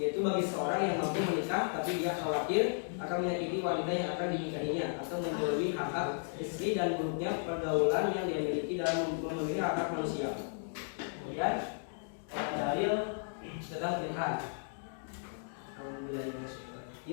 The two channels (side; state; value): right; silent; digital silence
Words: bagi seorang yang mampu menikah tapi dia khawatir akan menyakiti wanita yang akan dinikahinya atau menjauhi hak-hak istri dan buruknya pergaulan yang dia miliki dalam memenuhi hak-hak manusia. Kemudian dalil tentang pernikahan.